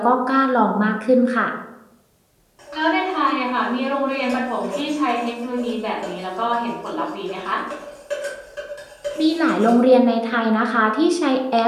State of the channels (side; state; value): both; identical; correlation 1.00